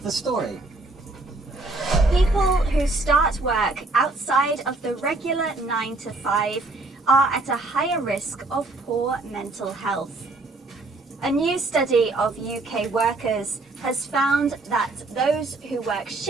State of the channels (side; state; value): left; quieter; 3.1 dB